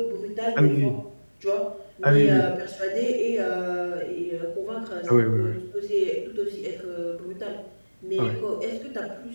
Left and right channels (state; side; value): inverted; both; correlation -1.00